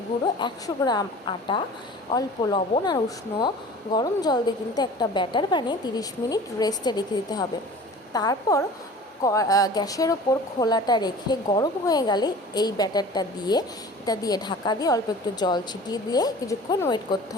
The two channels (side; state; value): both; normal; correlation 0.42